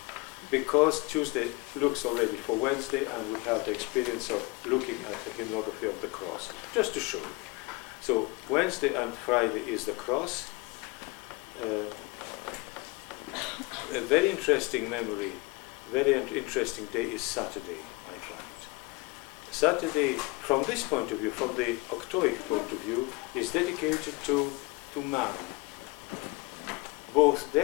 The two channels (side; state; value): right; quieter; 24.3 dB